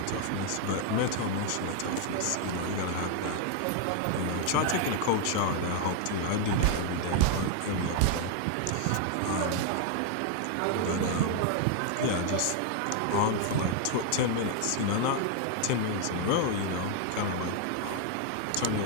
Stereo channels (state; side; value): different; both; correlation 0.00